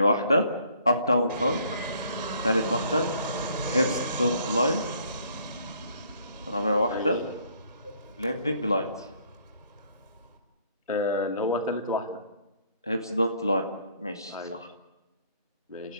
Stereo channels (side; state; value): both; inverted; correlation -0.63